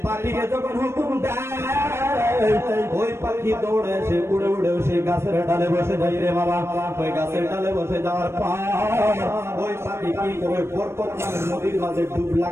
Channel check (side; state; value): left; late; 0.12 ms